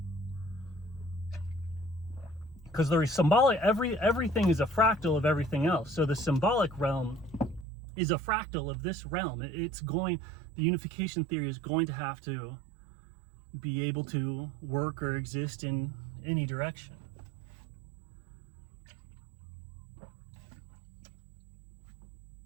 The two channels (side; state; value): left; drops out; at 7.7 s